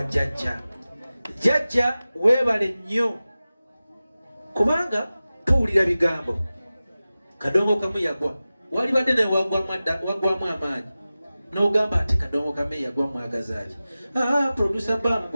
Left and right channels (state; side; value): inverted; both; correlation -0.96